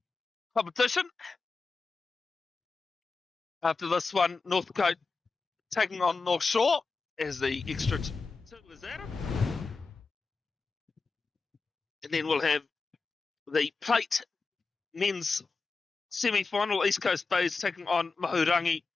competition. After this one, Northcote taking on North Shore as the extra 2 is added. And then we'll have the plate men's semi-final. East Coast Bays taking on Mahurangi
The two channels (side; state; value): right; quieter; 4.3 dB